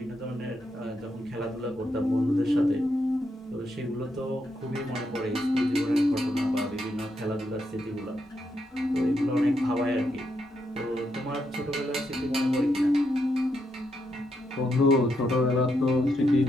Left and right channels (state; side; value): normal; both; correlation 0.80